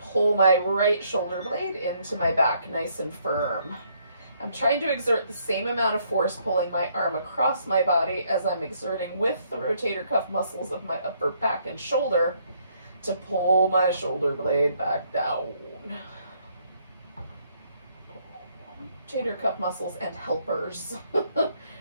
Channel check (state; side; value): inverted; both; correlation -0.69